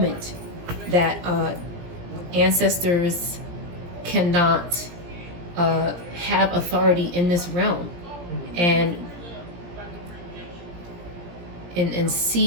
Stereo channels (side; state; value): left; late; 17 ms